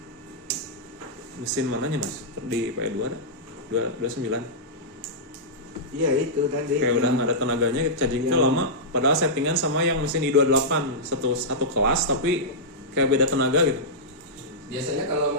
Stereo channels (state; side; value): normal; both; correlation -0.12